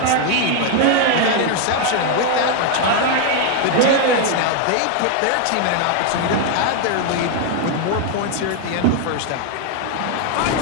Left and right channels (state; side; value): different; both; correlation 0.01